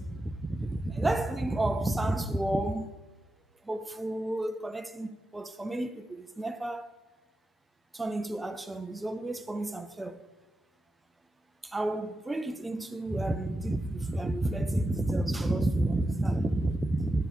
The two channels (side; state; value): both; normal; correlation 0.90